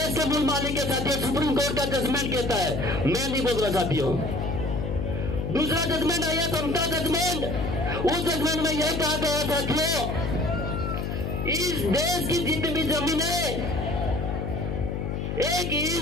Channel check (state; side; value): noise; left; hum, 3 dB below the sound